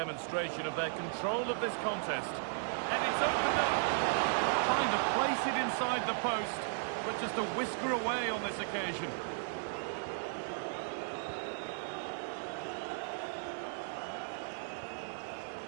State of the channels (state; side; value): silent; left; digital silence